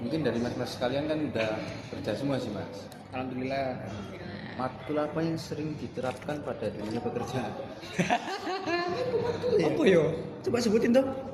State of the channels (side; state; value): both; identical; correlation 1.00